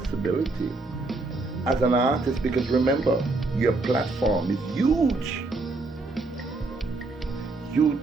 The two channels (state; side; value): quieter; left; 3.3 dB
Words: as an artist, because remember, your platform is huge.